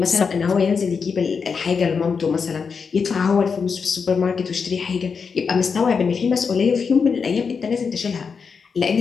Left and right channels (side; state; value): right; quieter; 5.7 dB